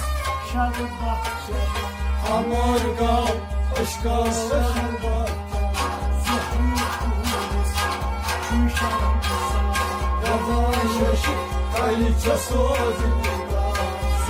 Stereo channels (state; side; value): identical; both; correlation 1.00